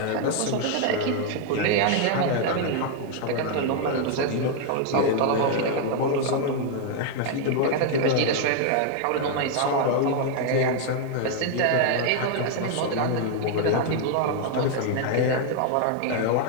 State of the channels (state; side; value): different; both; correlation 0.00